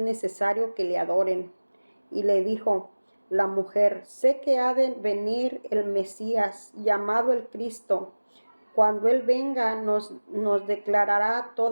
que le adoren. Y le dijo la mujer, sé que ha de venir el Mesías, llamado el Cristo. Cuando Él venga nos declarará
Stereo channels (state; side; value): inverted; both; correlation -1.00